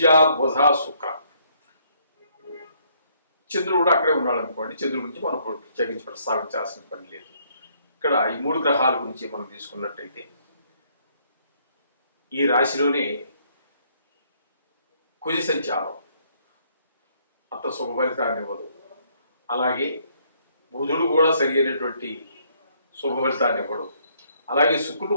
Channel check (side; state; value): both; inverted; correlation -0.68